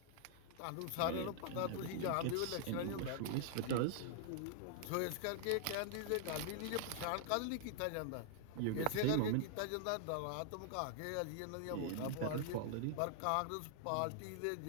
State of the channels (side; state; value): both; different; correlation -0.01